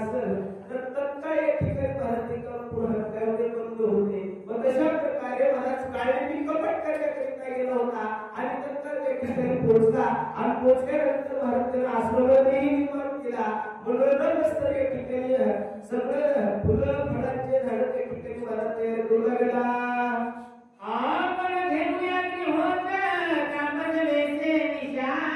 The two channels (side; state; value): both; identical; correlation 1.00